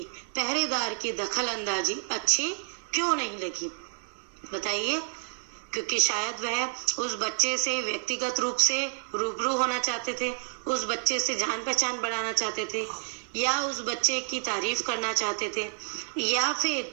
की दखल अंदाजी अच्छी क्यों नहीं लगी? बताइए। क्योंकि शायद वह उस बच्चे से व्यक्तिगत रूप से रूबरू होना चाहते थे, उस बच्चे से जान पहचान बढ़ाना चाहते थे, या उस बच्चे की तारीफ करना चाहते थे, या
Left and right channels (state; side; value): silent; left; 55 dB below the other